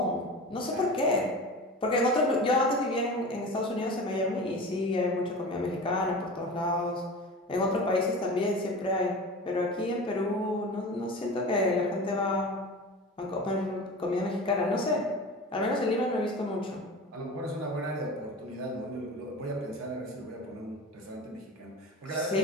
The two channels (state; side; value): normal; both; correlation 0.33